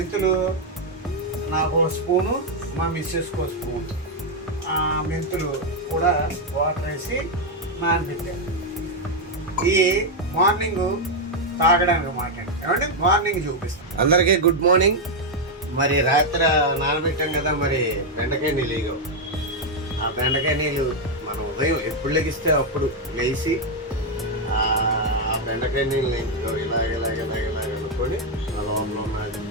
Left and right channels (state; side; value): normal; both; correlation 0.01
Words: నాకు 1 స్పూను, మా మిస్సెస్కి 1 స్పూన్ మెంతులు కూడా వాటర్ వేసి నానబెట్టాను. ఈ మార్నింగ్ తాగడానికి మాట ఏమంటే మార్నింగ్ చూపిస్తాను. అందరికీ గుడ్ మార్నింగ్. మరి రాత్రి నానబెట్టాం కదా, మరి బెండకాయ నీళ్ళు ఇగో. ఆ బెండకాయ నీళ్ళు మనం ఉదయం ఎప్పుడు లెగిస్తే అప్పుడు లేచి ఆ బెండకాయ నీళ్ళు ఇలాగ అనుకొని ఆ లోపల ఉన్నది